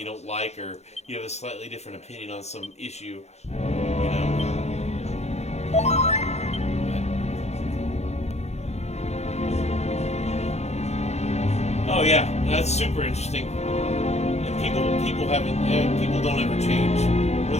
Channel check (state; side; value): late; right; 0.32 ms